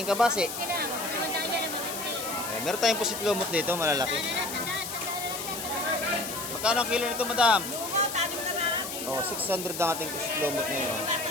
kabase. Meron tayong pusit lumot dito, malalaki. Magkano ang kilo nito, madam? Oh, 600 ang ating pusit lumot ngayon.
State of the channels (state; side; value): noise; left; hiss, 7 dB below the sound